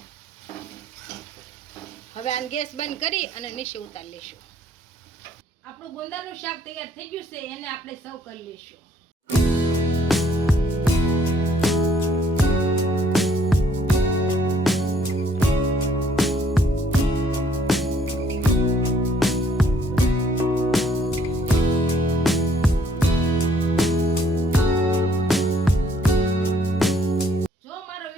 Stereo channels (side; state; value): both; normal; correlation 0.64